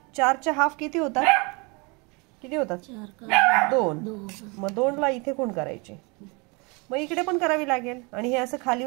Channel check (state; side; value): quieter; left; 29.4 dB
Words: 4च्या हाफ किती होतात? किती होतात? 2. मग 2ला इथे कोण करायचे? मग इकडे पण करावी लागेल. आणि हे असं